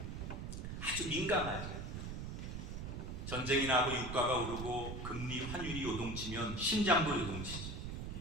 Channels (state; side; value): noise; right; rumble, 5 dB below the sound